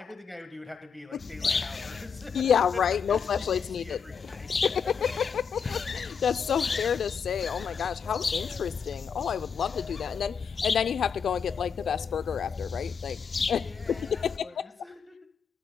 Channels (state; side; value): quieter; right; 6.5 dB